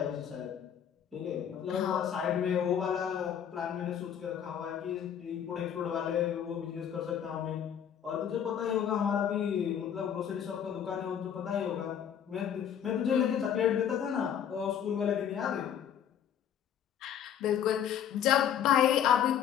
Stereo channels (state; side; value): quieter; right; 9.0 dB